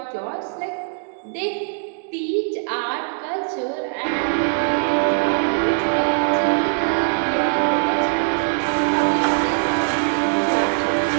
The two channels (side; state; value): left; silent; digital silence